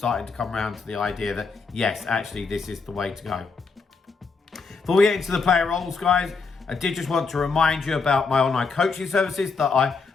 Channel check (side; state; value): right; quieter; 4.7 dB